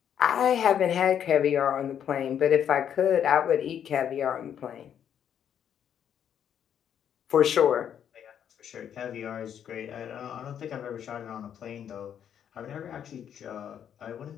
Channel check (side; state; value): right; quieter; 9.0 dB